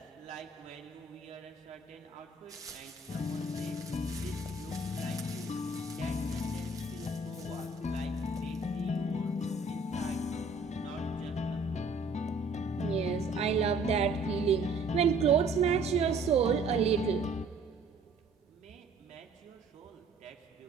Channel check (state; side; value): quieter; left; 3.1 dB